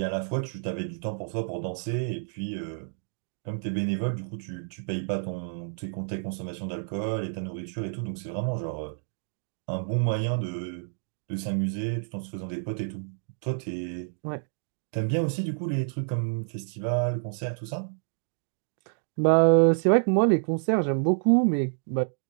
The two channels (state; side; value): silent; left; digital silence